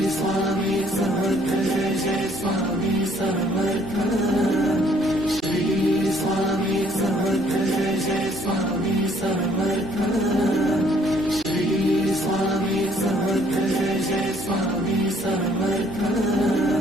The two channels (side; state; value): both; normal; correlation 0.62